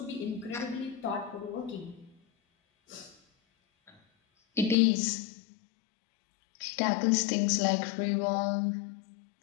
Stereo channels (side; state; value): right; drops out; at 4.8 s